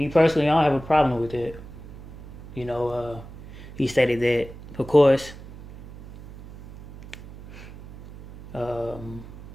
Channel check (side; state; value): right; noise; hum, 16 dB below the sound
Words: personally, I don't have a problem with it. You know, he stated that, of course,